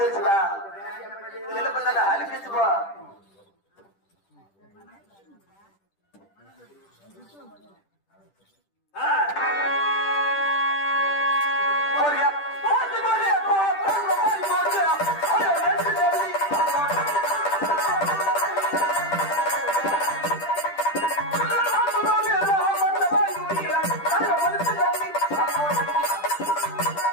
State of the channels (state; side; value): late; right; 10 ms